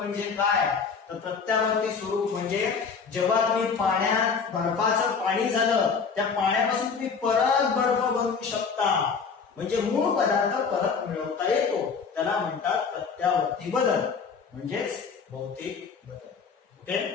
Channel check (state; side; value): quieter; right; 5.6 dB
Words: काय? तर प्रत्यावर्ती स्वरूप म्हणजे जेव्हा तुम्ही पाण्यात बर्फाचं पाणी झालं, त्या पाण्यापासून तुम्ही परत बर्फ बनवू शकता, म्हणजे मूळ पदार्थ परत मिळवता येतो, त्याला म्हणतात प्रत्यावर्ती बदल म्हणजेच भौतिक बदल. ओके,